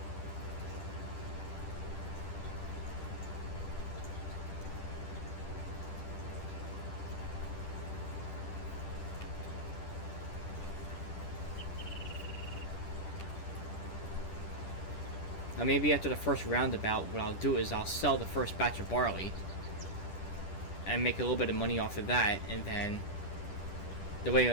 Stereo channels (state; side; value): late; right; 10 ms